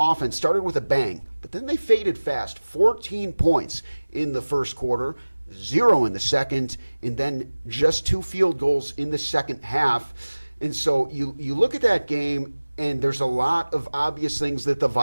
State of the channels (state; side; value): inverted; both; correlation -1.00